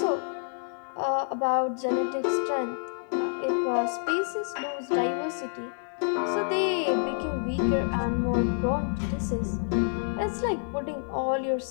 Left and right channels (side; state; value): right; silent; digital silence